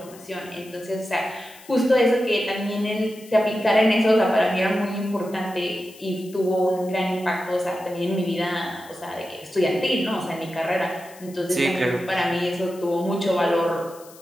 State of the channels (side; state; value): left; noise; hiss, 22 dB below the sound